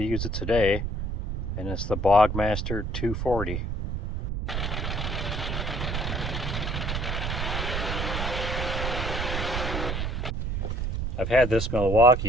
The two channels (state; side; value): noise; right; rumble, 2 dB below the sound